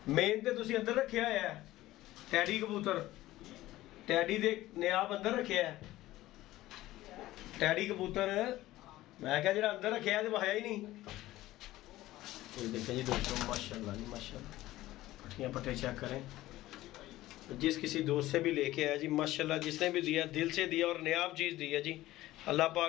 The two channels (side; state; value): right; quieter; 16.3 dB